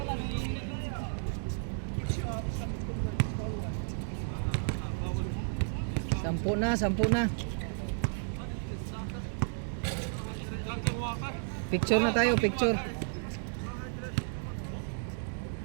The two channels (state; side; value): silent; left; digital silence